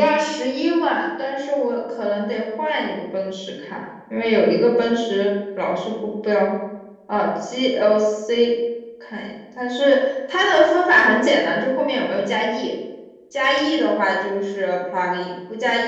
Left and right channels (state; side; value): identical; both; correlation 1.00